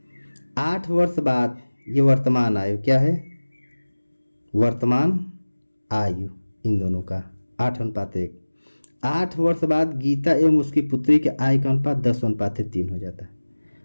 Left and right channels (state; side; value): inverted; both; correlation -1.00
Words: 8 वर्ष बाद ये वर्तमान आयु क्या है, वर्तमान आयु इन दोनों का 8 अनुपात 1। 8 वर्ष बाद गीता एवं उसकी पुत्री के आयु का अनुपात 10 अनुपात 3 हो जाता है।